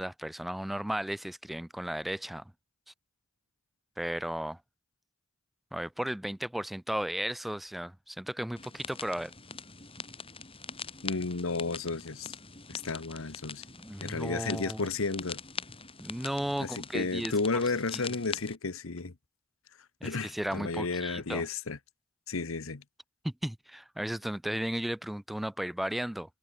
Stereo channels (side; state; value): both; normal; correlation 0.43